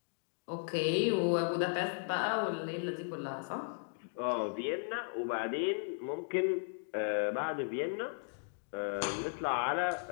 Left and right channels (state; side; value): silent; right; digital silence